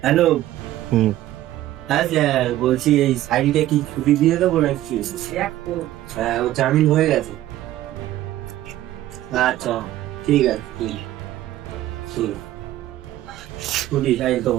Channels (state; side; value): quieter; left; 14.3 dB